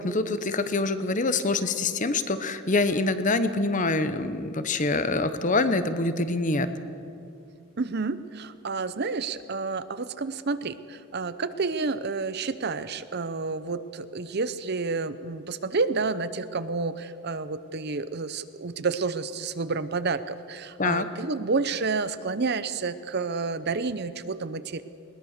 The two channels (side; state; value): both; normal; correlation 0.10